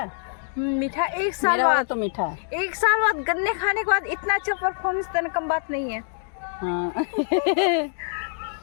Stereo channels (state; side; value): silent; right; digital silence